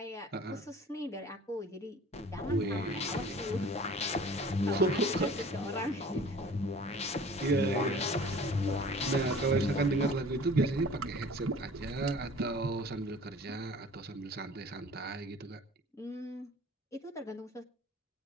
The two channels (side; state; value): both; normal; correlation 0.47